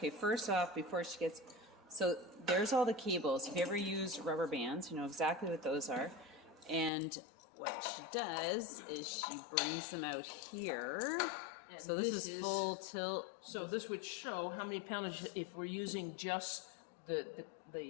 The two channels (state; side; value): drops out; right; at 6.9 s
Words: first off, before she gets, so there's all the cables. If you ever use rubber bands, you know exactly what those are. And what she does is she brings them out here. And so this is full tilt. So this would show how many pounds if we're using just the